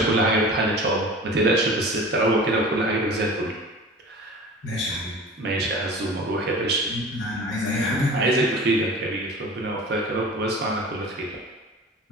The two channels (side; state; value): both; normal; correlation 0.38